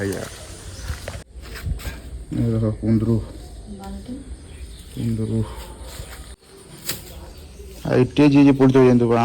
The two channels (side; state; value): both; identical; correlation 1.00